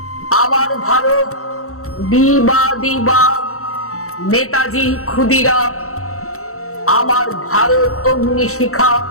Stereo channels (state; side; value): late; right; 0.64 ms